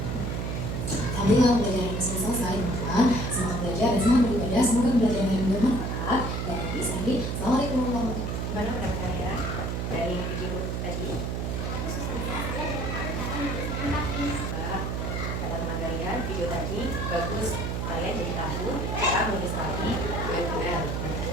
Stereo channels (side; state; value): right; noise; hum, 1 dB below the sound